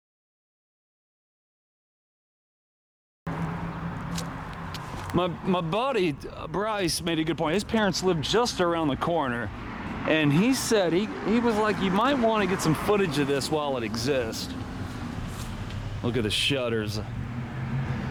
My buddy Bryce made a good point. His parents lived just around the corner, and he said he was like, you might want to get some footage of this while it exists. Look at the shutters.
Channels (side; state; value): both; identical; correlation 1.00